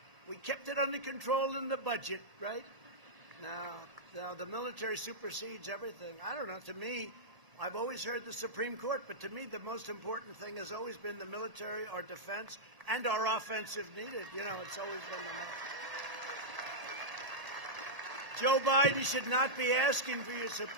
we kept it under control in the budget, right? Now the military supersedes everything. I don't know. To me, I've always heard the Supreme Court, but to me, the most important thing has always been the military, our defense, and our offense if needed. You know, it's always been the most. Joe Biden should not be asking for your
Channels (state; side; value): late; left; 1.8 ms